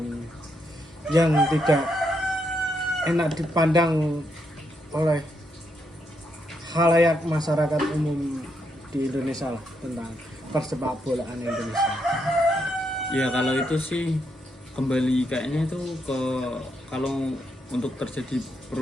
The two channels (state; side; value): normal; both; correlation 0.79